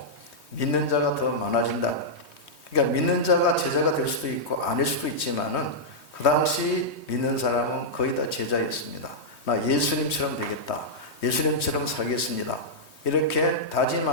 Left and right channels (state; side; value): late; right; 3.2 ms